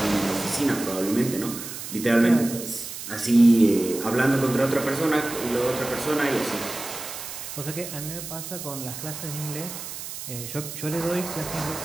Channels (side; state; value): right; noise; hiss, 9 dB below the sound